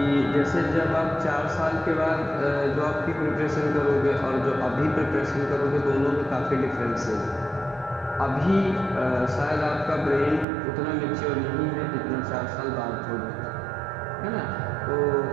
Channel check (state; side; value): drops out; left; at 10.5 s